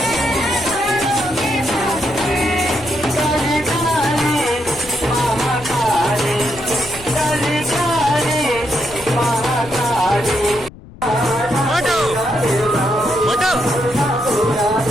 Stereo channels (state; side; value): noise; left; rumble, 18 dB below the sound